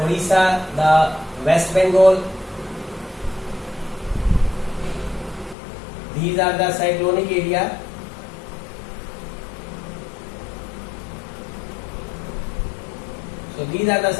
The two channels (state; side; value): drops out; right; at 5.6 s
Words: Odisha, the West Bengal. These are the cyclonic area. So these are the